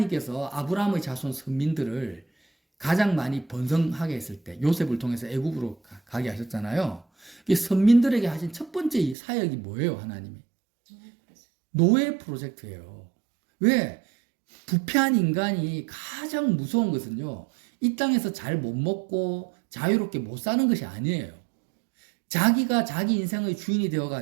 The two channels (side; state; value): left; drops out; at 9.2 s